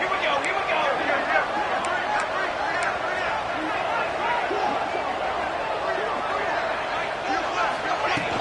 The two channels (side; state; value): both; identical; correlation 1.00